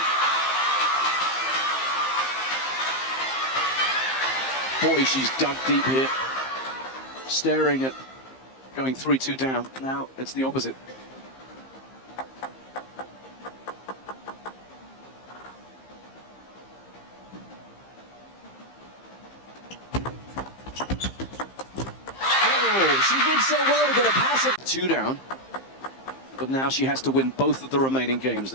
Boy, she's dug deep here. Staring at going 3-2 down. Now it's the opposite. Oh, she did so well to get a passive. 2 down. But now she has to win both of the remaining games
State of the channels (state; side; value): late; right; 15 ms